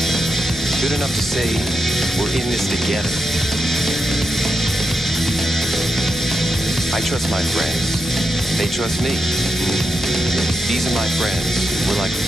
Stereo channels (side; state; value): both; normal; correlation 0.85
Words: Good enough to say we're in this together. I trust my friends. They trust me. These are my friends. We're like